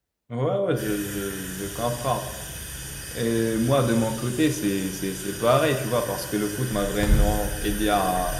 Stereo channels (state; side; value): identical; both; correlation 1.00